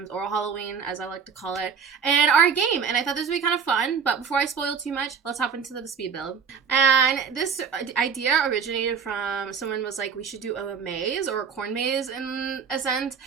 or Halloween, as I like to call it, and our game. And I thought this would be kind of fun, but before I spoil too much, let's hop into the speed build. And this idea originated from someone was like, we should do a maze or a corn maze in a sense.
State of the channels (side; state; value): left; quieter; 6.5 dB